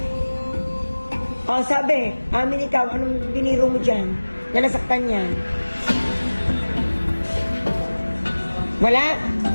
O sabi, amin ikaw, anong biniro mo dyan? Na nasaktan yan? Wala?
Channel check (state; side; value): inverted; both; correlation -1.00